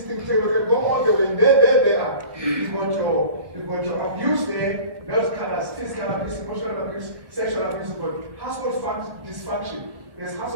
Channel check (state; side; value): late; left; 1.4 ms